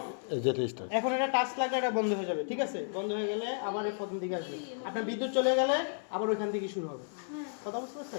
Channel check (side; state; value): right; silent; 56 dB below the other